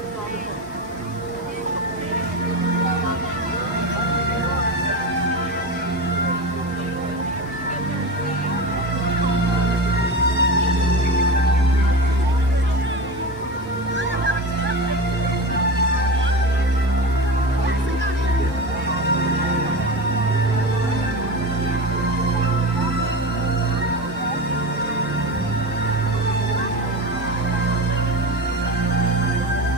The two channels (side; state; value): both; normal; correlation 0.24